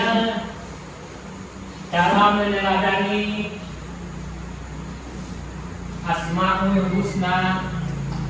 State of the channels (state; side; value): identical; both; correlation 1.00